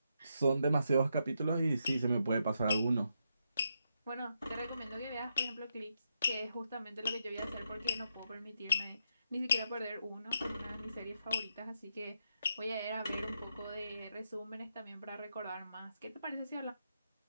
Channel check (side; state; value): both; inverted; correlation -0.82